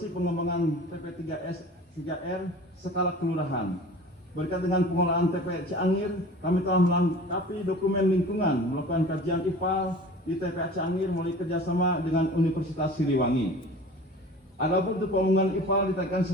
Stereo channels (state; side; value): normal; both; correlation 0.41